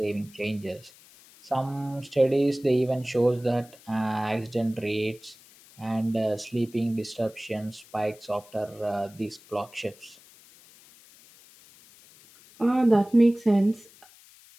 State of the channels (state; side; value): noise; left; hiss, 24 dB below the sound